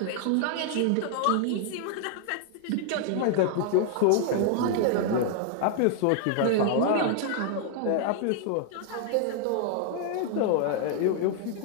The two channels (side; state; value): both; different; correlation 0.00